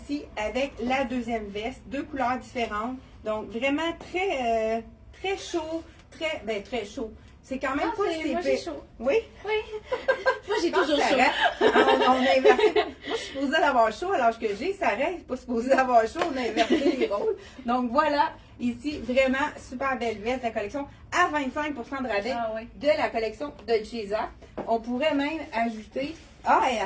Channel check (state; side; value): identical; both; correlation 1.00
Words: avec la deuxième veste, 2 couleurs différentes. Donc, vraiment très, très chaud, très chaud. C'est quand même pas si moi, j'ai chaud. Oui? Oui. Moi, j'ai toujours chaud. On a inversé. Moi, je suis supposée d'avoir chaud à l'âge que j'ai. Sarah n'est pas supposée d'avoir chaud. On a inversé les rôles. Donc, voilà. Ici, vraiment super belle veste de la collection à 25% de rabais de la collection de Dolce. On pourrait même ajouter... Ah, et